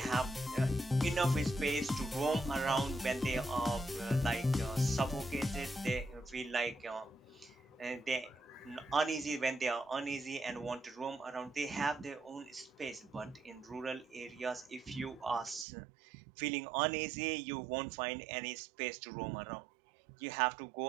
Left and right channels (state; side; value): drops out; left; at 15.7 s